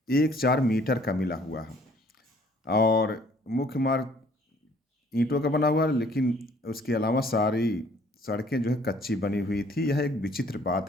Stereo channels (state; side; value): normal; both; correlation 0.59